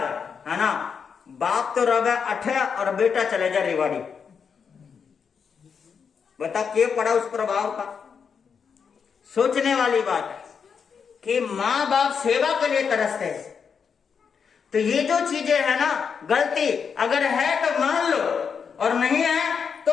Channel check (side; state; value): right; quieter; 6.4 dB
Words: है ना, बाप तो रवे अठे और बेटा चले जा रेवाड़ी। बता क्या पड़ा उस प्रभाव का। सोचने वाली बात है कि माँ बाप सेवा के लिए तरसते हैं। तो ये जो चीजें है ना, गलती अगर है तो मान लो, और नहीं है